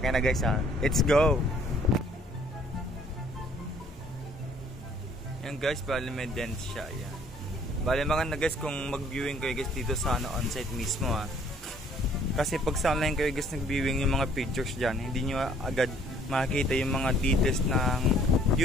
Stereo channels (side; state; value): both; normal; correlation 0.59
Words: guys ha. Let's go! Yan guys, bali may dent siya. Yan. Bali maganda guys kung mag-viewing kayo guys dito sa on-site mismo ha. Kasi pag sa online kayo guys nag-viewing yung mga pictures dyan, hindi nyo agad makikita yung mga details ng